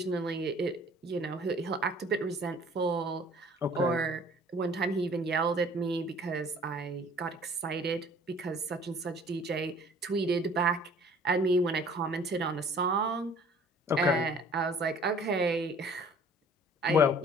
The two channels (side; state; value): both; normal; correlation 0.52